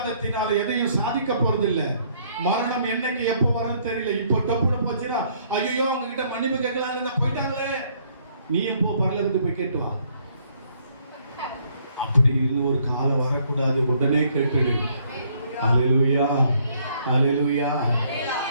எதையும் சாதிக்க போறதில்லை. மரணம் என்னைக்கு எப்போ வரும் தெரியல. இப்போ டப்புனு போச்சுன்னா ஐயோ அவங்க கிட்ட மன்னிப்பு கேட்கலாம் போயிட்டாங்களே, நீ எப்போ பரலோகத்துக்கு போய் கேட்டு வா. அப்படி இன்னொரு காலம் வரக்கூடாது, உடனே கேட்டுடு. அல்லேலூயா அல்லேலூயா.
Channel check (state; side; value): inverted; both; correlation -0.66